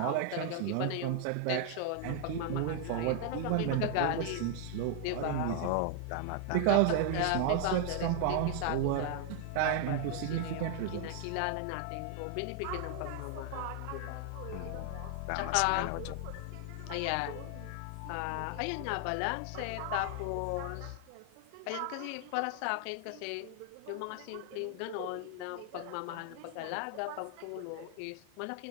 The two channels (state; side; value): different; both; correlation 0.00